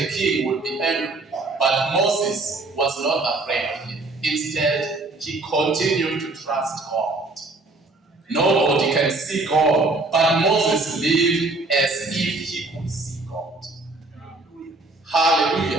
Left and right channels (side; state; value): left; quieter; 3.2 dB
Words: king would be angry, but Moses was not afraid of him. Instead, he continued to trust God. Nobody can see God, but Moses lived as if he could see God.